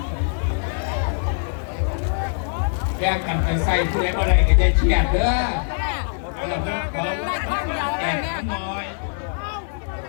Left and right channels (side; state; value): right; silent; digital silence